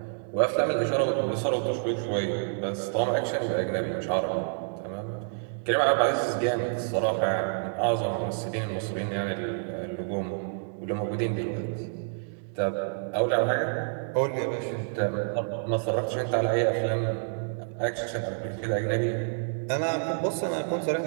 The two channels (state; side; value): silent; left; digital silence